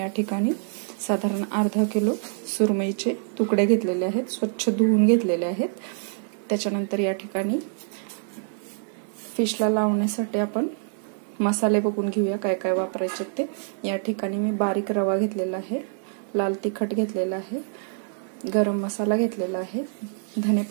ठिकाणी साधारण अर्धा किलो सुरमईचे तुकडे घेतलेले आहेत, स्वच्छ धुवून घेतलेले आहेत। त्याच्यानंतर या ठिकाणी फिशला लावण्यासाठी आपण मसाले बघून घेऊया काय काय वापरायचे ते। या ठिकाणी मी बारीक रवा घेतलेला आहे, लाल तिखट घेतलेला आहे, गरम मसाला घेतलेला आहे, धने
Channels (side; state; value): left; silent; 59 dB below the other